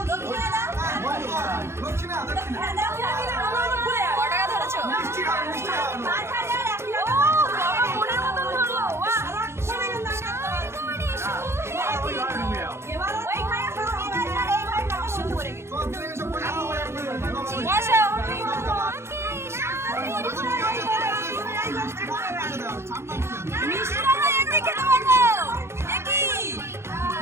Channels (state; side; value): late; left; 0.13 ms